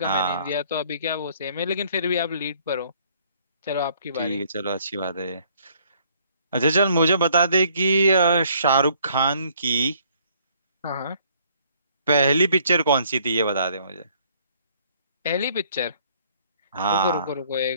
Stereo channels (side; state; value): both; inverted; correlation -0.62